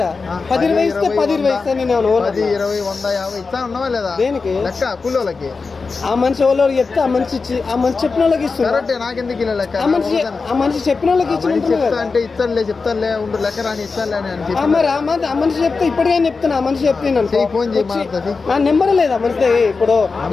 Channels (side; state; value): right; quieter; 4.4 dB